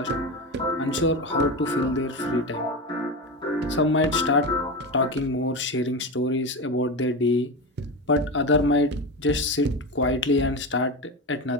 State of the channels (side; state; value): both; normal; correlation 0.20